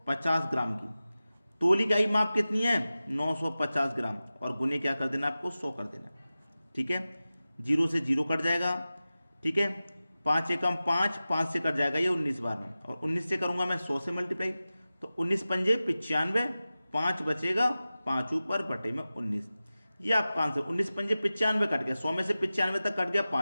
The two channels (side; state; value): both; inverted; correlation -0.96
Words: 50 ग्राम की। तोली गई माप कितनी है? 950 ग्राम, और गुने क्या कर देना आपको? 100 कर देना। ठीक है, 0 से 0 कट जाएगा। ठीक है, 5 एकम 5, 5 से कट जाएगा ये 19 बार में, और 19 से करूंगा मैं 100 से मल्टीप्लाई, तो 19 पंजे 95, 5 बचेगा, 5 ऊपर बटे में 19। ये आपका आंसर। 19 पंजे 95 कट गया, 100 में से 95 तक कट गया